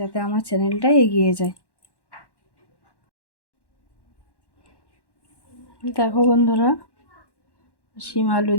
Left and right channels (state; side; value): late; right; 1.1 ms